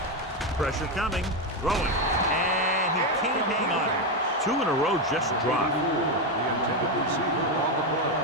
Pressure coming. Throwing. And he can't hang on. 2 in a row just dropped. The intended receiver on the play.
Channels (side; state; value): both; normal; correlation 0.09